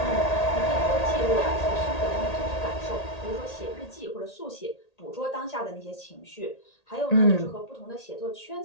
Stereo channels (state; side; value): late; right; 1.8 ms